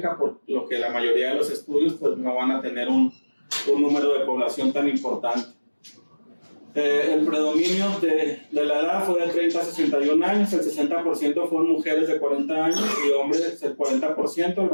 por lo que la mayoría de los estudios pues, no van a tener un número de población tan importante. El predominio de la edad fue de 30 a 61 años, el 60% fueron mujeres de 40 años y hombres el 40%,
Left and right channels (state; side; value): inverted; both; correlation -1.00